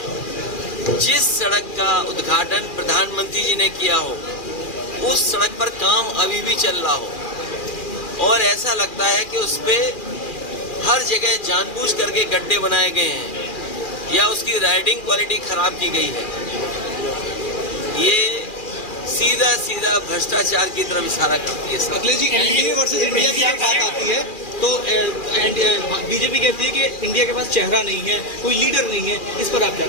जिस सड़क का उद्घाटन प्रधानमंत्री जी ने किया हो, उस सड़क पर काम अभी भी चल रहा हो और ऐसा लगता है कि उस पे हर जगह जानबूझ करके गड्ढे बनाए गए हैं या उसकी राइडिंग क्वालिटी खराब की गई है। ये सीधा सीधा भ्रष्टाचार की तरफ इशारा करती है। Akhilesh ji, NDA versus India की जब बात आती है तो बीजेपी कहती है कि इंडिया के पास चेहरा नहीं है, कोई लीडर नहीं है, इस पर आप क्या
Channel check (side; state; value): right; late; 2.4 ms